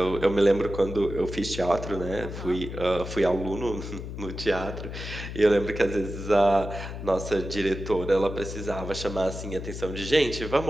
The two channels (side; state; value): left; noise; hum, 8 dB below the sound